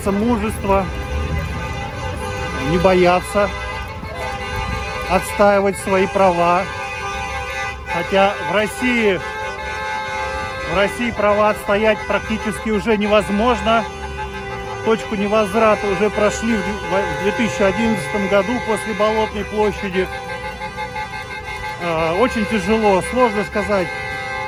мужества, не бояться, отстаивать свои права. Хотя в России права отстоять практически уже невозможно. Точку невозврата уже прошли в 2011 году после Болотной площади. Очень тяжело, сложно сказать.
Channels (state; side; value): identical; both; correlation 1.00